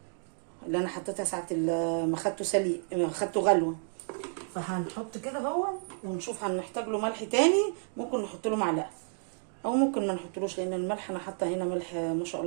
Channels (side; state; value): left; silent; 57 dB below the other